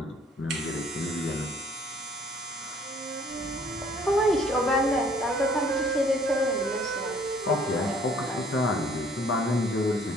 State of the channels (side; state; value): both; normal; correlation 0.58